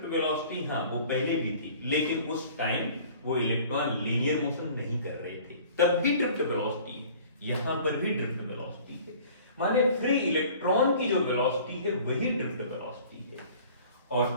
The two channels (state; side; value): inverted; both; correlation -0.49